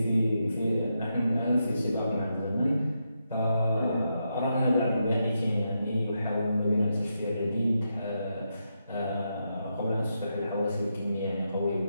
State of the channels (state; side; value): inverted; both; correlation -0.84